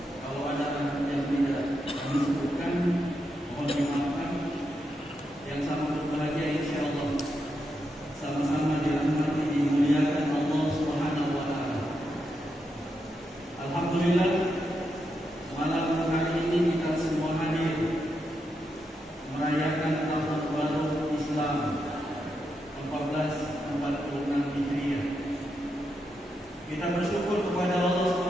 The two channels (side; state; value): both; normal; correlation 0.84